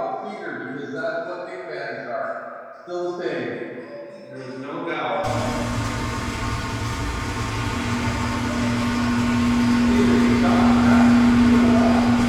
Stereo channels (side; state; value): both; identical; correlation 1.00